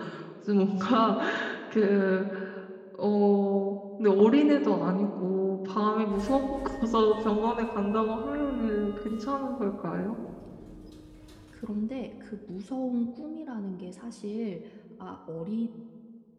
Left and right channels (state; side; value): identical; both; correlation 1.00